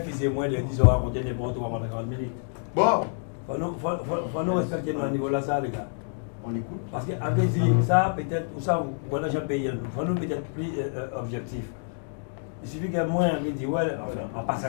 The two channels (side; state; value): right; silent; digital silence